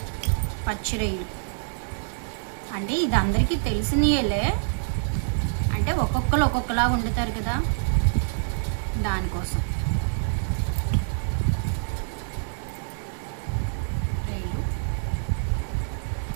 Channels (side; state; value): left; silent; 61 dB below the other